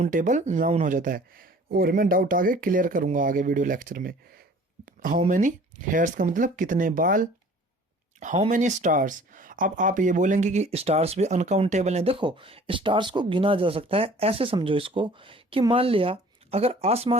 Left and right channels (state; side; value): normal; both; correlation 0.50